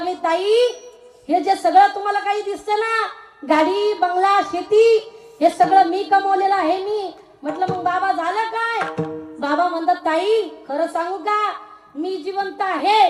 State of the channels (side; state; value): both; identical; correlation 1.00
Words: ताई हे जे सगळं तुम्हाला काही दिसते ना, गाडी बंगला शेती, हे सगळं मी कमवलेलं आहे मी. म्हटलं मग बाबा झालं काय? बाबा म्हणतात, ताई खरं सांगू का, मी जिवंत